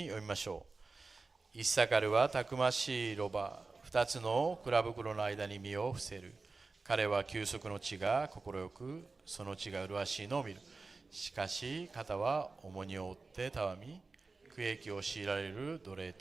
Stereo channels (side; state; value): left; quieter; 3.9 dB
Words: 読みましょう。イッサカルはたくましいロバ、2つの蔵袋の間に身を伏せる。彼は休息の地が快く、その地が麗しいのを見る。しかし肩は重荷を負ってたわみ、苦役を強いられる奴隷